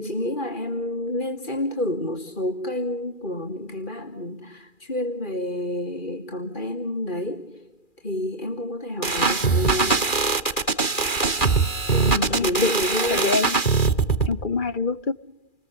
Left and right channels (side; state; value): right; late; 2.4 ms